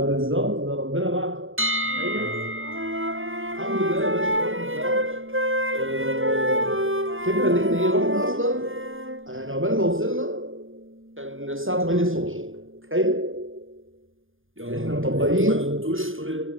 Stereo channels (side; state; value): left; late; 0.59 ms